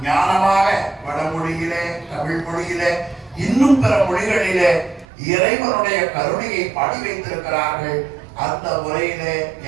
ஞானமாக வடமொழியிலே தமிழ் மொழியிலே இன்னும் பிற மொழிகளிலே இறைவனுடைய கருணையை பாடி வைத்திருக்கிறார்கள். அந்த முறையிலே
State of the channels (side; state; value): left; drops out; at 5.1 s